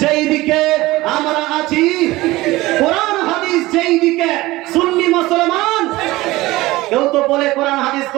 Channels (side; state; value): left; quieter; 19.0 dB